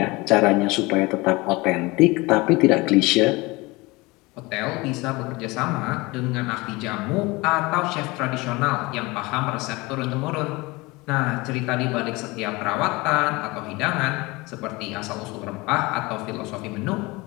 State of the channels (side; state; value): right; quieter; 23.3 dB